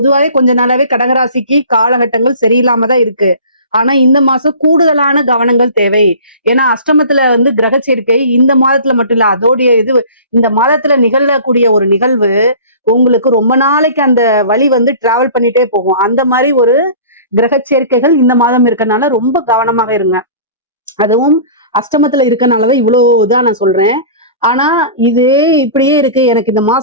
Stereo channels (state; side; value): inverted; both; correlation -0.41